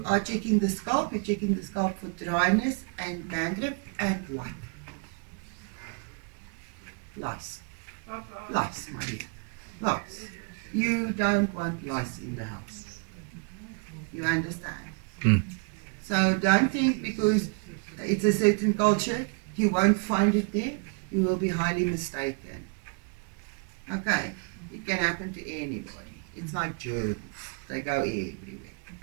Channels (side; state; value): left; quieter; 35.3 dB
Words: are checking the scalp. You're checking the scalp for dryness and dandruff and what? Lice. Lice, my dear. Lice. You don't want lice in the house. You understand? So don't think because it's a certain culture, you won't find it there. You will be highly mistaken. Okay? It can happen to anybody. It's like germs. They go everywhere.